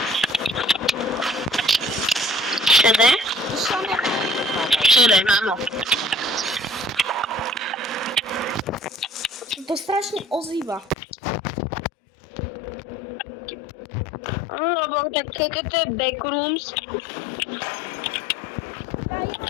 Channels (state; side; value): drops out; right; at 11.0 s